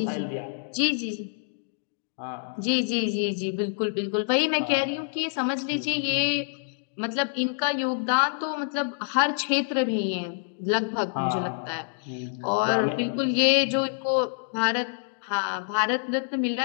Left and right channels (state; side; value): silent; right; digital silence